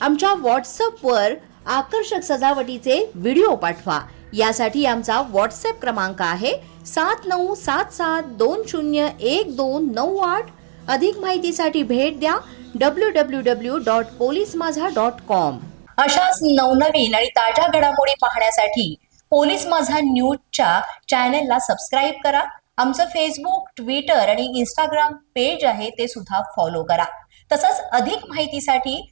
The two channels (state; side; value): silent; left; digital silence